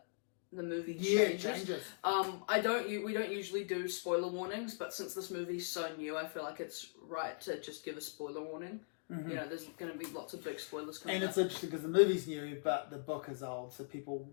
the movie changes. We don't usually do spoiler warnings, but since this movie's so new, I feel like it's right to just give a spoiler warning. There's going to be lots of big spoilers coming up. And it's interesting because the movie's new, but the book is old, so people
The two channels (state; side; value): silent; right; digital silence